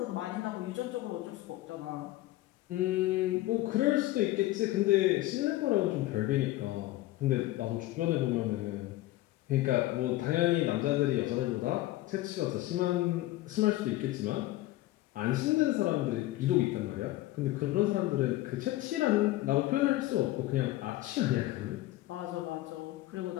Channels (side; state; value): right; quieter; 16.7 dB